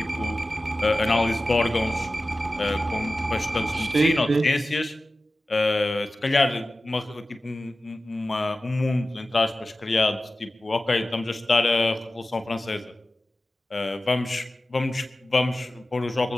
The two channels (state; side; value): normal; both; correlation 0.95